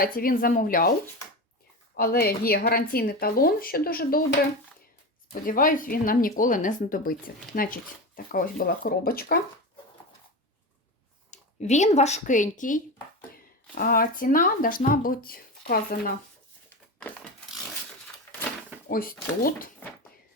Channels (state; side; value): normal; both; correlation 0.23